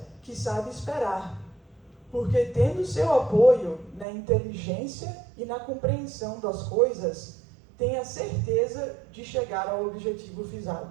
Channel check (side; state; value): left; drops out; at 4.0 s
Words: que sabe esperar, porque tendo seu apoio na inteligência e na compreensão das coisas, tem a certeza de chegar ao objetivo